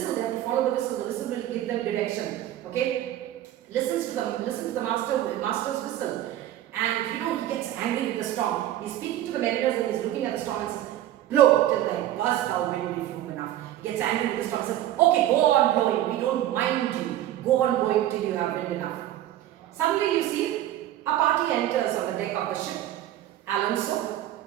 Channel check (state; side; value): quieter; left; 13.0 dB